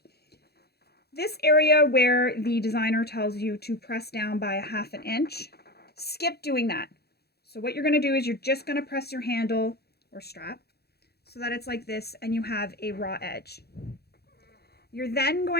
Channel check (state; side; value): late; right; 0.47 ms